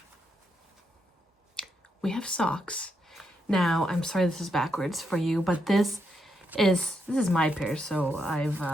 We have socks. Now, I'm sorry this is backwards for you, but this is my pair, so I've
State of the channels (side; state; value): both; normal; correlation 0.81